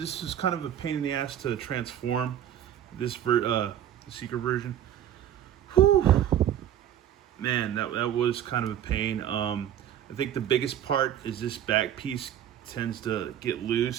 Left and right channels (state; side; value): quieter; left; 10.7 dB